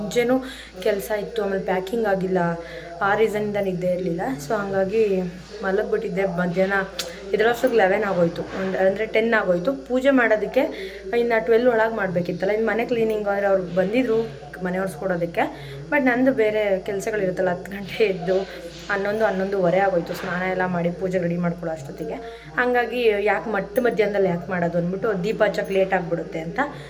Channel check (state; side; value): identical; both; correlation 1.00